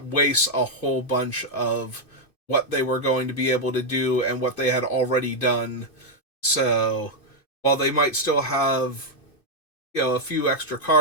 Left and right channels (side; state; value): right; late; 2.5 ms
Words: wastes a whole bunch of what they were going to be able to do and what they had already done. So while they might still have, a few extra